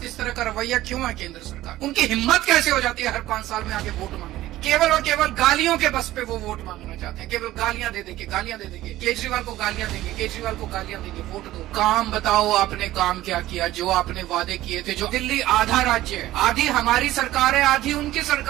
इस तरह का रवैया क्यों है केंद्र सरकार? उनकी हिम्मत कैसे हो जाती है हर 5 साल में आके वोट मांगने की? केवल और केवल गालियों के बस पे वो वोट मांगना चाहते हैं, केवल गालियां दे देंगे, गालियां दे देंगे, केजरीवाल को गालियां देंगे, केजरीवाल को गालियां देंगे, वोट दो। काम बताओ आपने काम क्या किया? जो आपने वादे किए थे, जो दिल्ली आधा राज्य है, आधी हमारी सरकार है, आधी उनकी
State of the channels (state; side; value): quieter; left; 15.5 dB